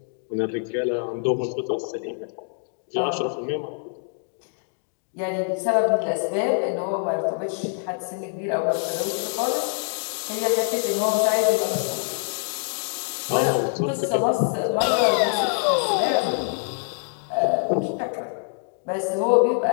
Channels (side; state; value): right; silent; digital silence